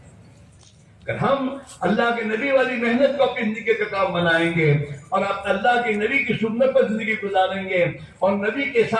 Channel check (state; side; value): identical; both; correlation 1.00